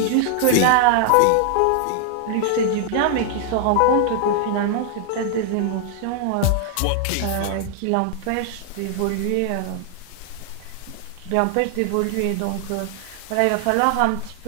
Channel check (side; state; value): both; different; correlation -0.01